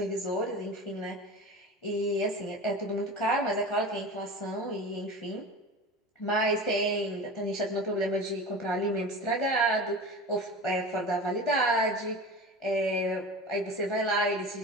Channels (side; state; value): both; normal; correlation 0.32